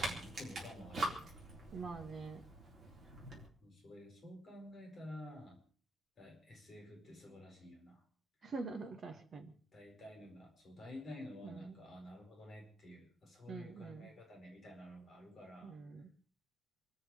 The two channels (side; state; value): both; normal; correlation 0.78